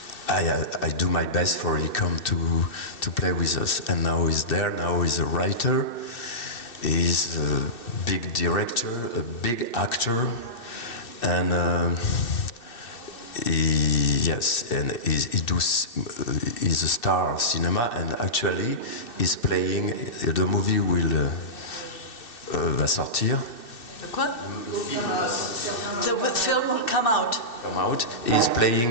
do my best for he come to play with us. And now he's there. Now he's a writer. He's a big director, a big actor, and he's a star of cinema. And actually, he's playing. The movie va sortir. The quoi? The film will come out. He's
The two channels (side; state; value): right; late; 2.6 ms